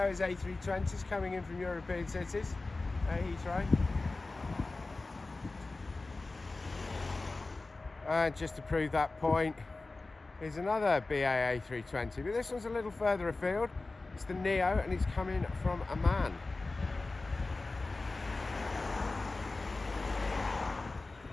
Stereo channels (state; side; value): quieter; right; 3.4 dB